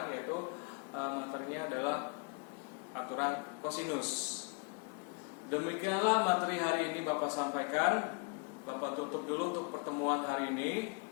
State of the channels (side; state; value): right; quieter; 35.1 dB